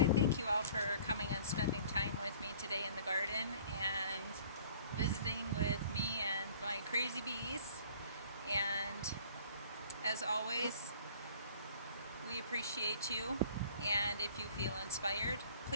thank you all for coming and spending time with me today in the garden and visiting with me and my crazy bees. And as always, we appreciate you. And if you feel inspired,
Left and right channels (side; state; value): both; inverted; correlation -0.52